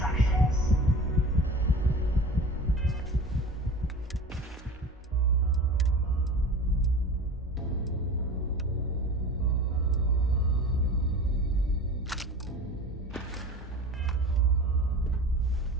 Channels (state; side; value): normal; both; correlation 0.36